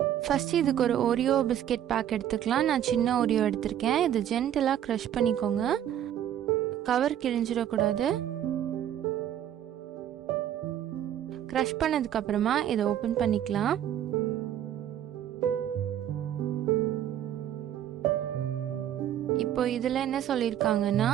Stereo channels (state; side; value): quieter; left; 10.7 dB